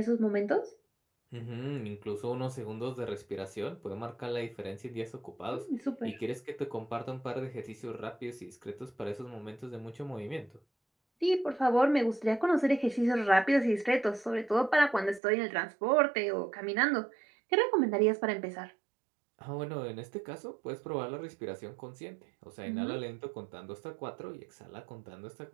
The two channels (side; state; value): left; drops out; at 15.2 s